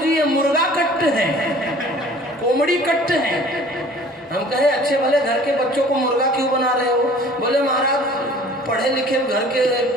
ये मुर्गा कट है, कोमड़ी कट है। हम कहे अच्छे भले घर के बच्चों को मुर्गा क्यों बना रहे हो? बोले महाराज पढ़े लिखे घर के,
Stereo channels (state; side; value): normal; both; correlation 0.49